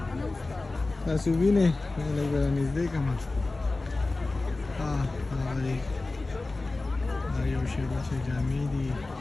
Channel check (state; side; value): quieter; right; 3.3 dB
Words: तासुबी ने लगा नजदे कमा हाँ आयो शेमा शे जामी दी